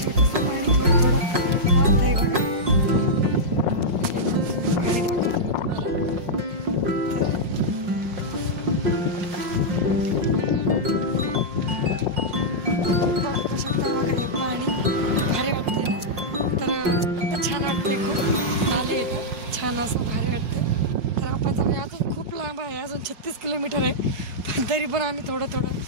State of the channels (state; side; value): late; left; 5.6 ms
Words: पण आम्ही थोडं